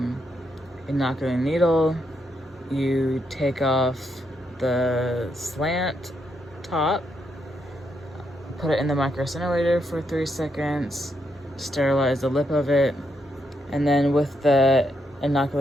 inoculating needle. You take off the slant top, put it in the micro incinerator for 3 seconds, sterilize the lip of it, and then with the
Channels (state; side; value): normal; both; correlation 0.79